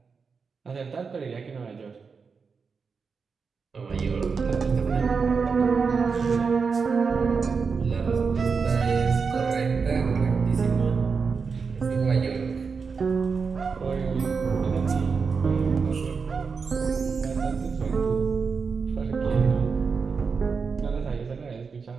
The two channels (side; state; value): left; quieter; 5.3 dB